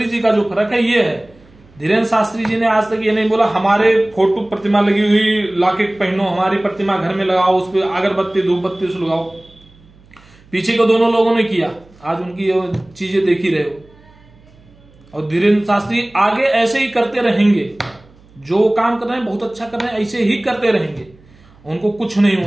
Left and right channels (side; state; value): right; noise; hum, 27 dB below the sound